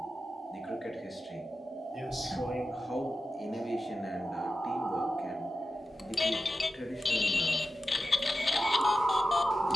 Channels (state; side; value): normal; both; correlation 0.92